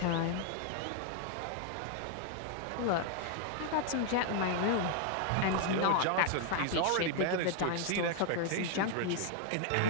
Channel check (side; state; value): both; different; correlation 0.00